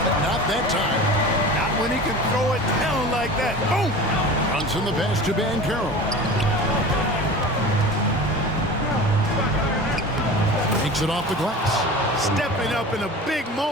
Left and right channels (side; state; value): both; normal; correlation 0.36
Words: but not that time. Not when he can throw it down like that. Boom! Brunson the pass to Banchero. Takes it off the glass. Stepping up in a big